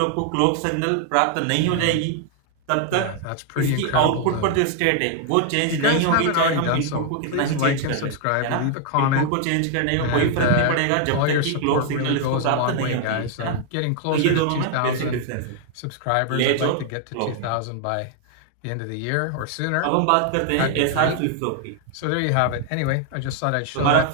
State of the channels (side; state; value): both; different; correlation 0.00